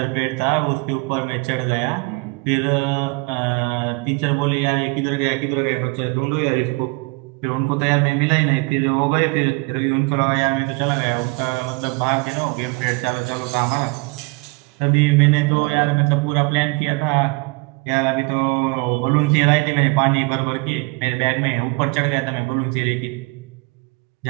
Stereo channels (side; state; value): left; quieter; 28.3 dB